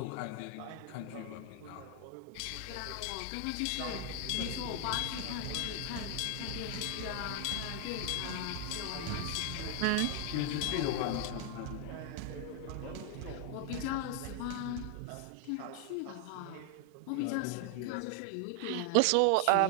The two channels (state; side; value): different; both; correlation 0.00